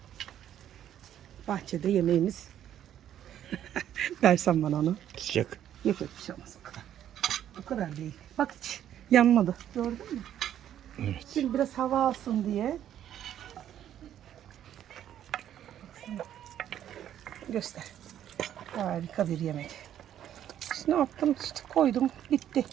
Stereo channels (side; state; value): left; quieter; 10.8 dB